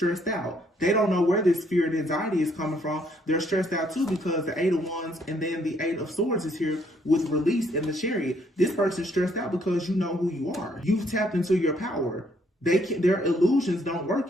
out. They don't know where this fear and anxiety is coming from. They're stressed out too because the 8 of Wands and then the 8 of Swords is here with release in the Chariot. This person's stressed out because you know who you are. You've tapped into your power. Their illusions don't work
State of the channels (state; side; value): normal; both; correlation 0.68